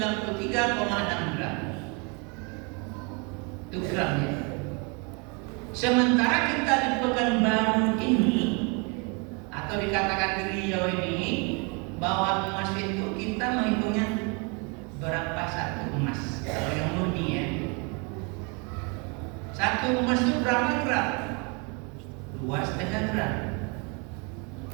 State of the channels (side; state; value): left; quieter; 32.7 dB